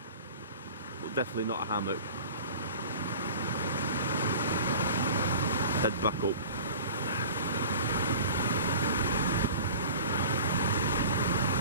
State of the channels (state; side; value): inverted; both; correlation -0.41